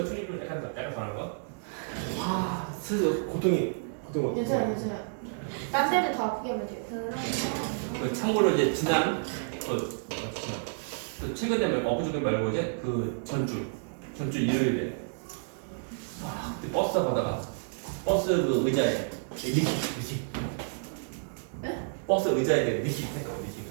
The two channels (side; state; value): left; silent; digital silence